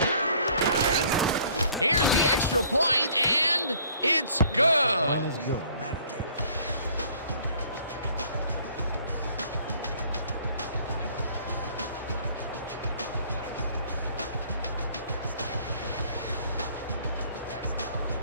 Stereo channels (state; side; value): inverted; both; correlation -0.57